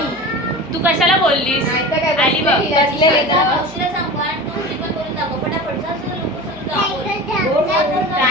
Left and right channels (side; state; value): left; noise; hum, 23 dB below the sound